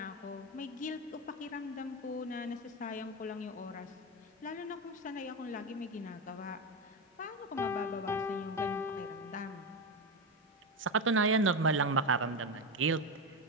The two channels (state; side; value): normal; both; correlation 0.14